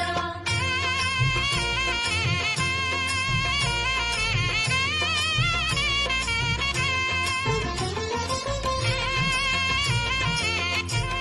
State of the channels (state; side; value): identical; both; correlation 1.00